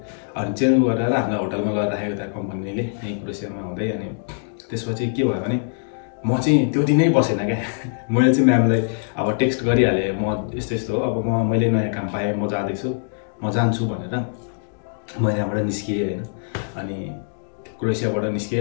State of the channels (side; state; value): right; silent; digital silence